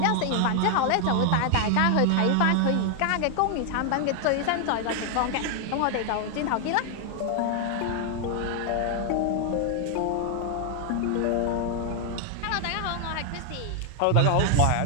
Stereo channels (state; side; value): different; both; correlation 0.00